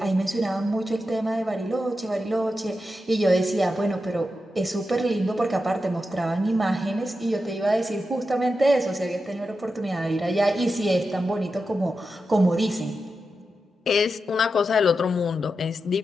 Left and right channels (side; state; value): both; normal; correlation 0.89